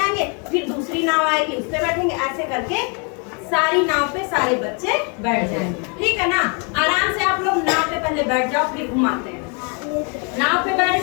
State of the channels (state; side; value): quieter; right; 35.9 dB